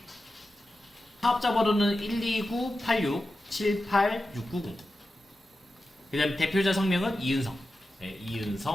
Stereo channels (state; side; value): normal; both; correlation 0.92